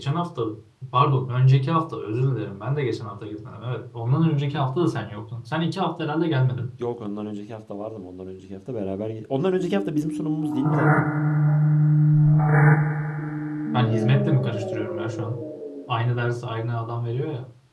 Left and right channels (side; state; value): both; identical; correlation 1.00